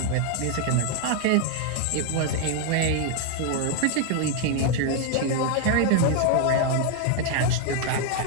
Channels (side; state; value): both; different; correlation 0.00